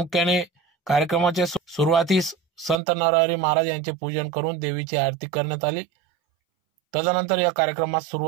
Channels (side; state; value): left; drops out; at 2.8 s